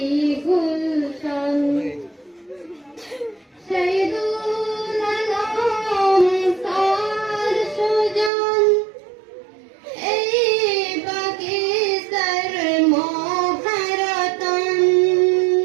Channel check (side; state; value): left; drops out; at 8.3 s